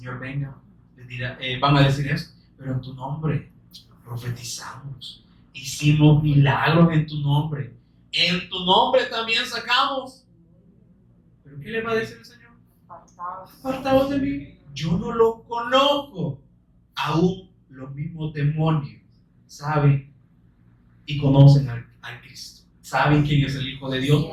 venga, les dirá, van a decir esto: pero en tu nombre profetizamos, hicimos milagros en tu nombre, en tu nombre también sacamos. ¿Pero qué le va a decir el Señor? Apartaos de mí, yo no lo conozco. Aún los mismos demonios saben y conocen al Cristo, saben quién es el Hijo de Dios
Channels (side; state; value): both; identical; correlation 1.00